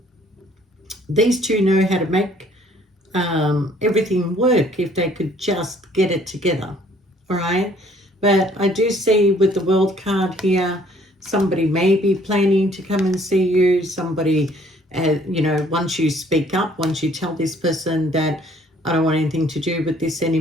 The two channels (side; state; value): both; normal; correlation 0.60